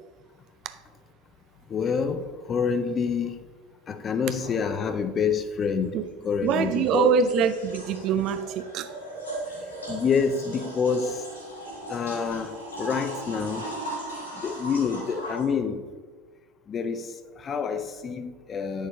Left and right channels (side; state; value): both; normal; correlation 0.49